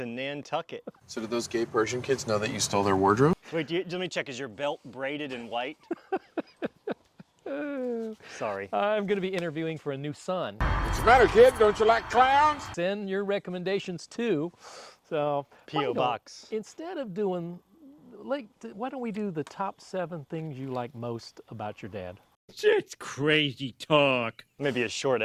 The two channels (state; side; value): identical; both; correlation 1.00